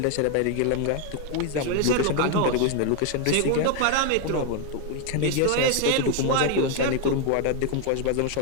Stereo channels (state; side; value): different; both; correlation 0.01